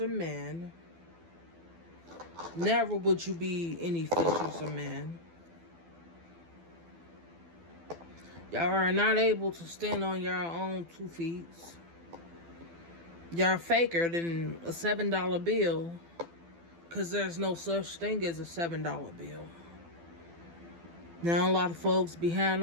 of men. Never would you be any fishers of men. Y'all are not able to stand on your own 2 feet. Y'all faker than a $7 bill, because there's no such thing as a $7 bill. Now a lot of folks behind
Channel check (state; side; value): late; left; 12 ms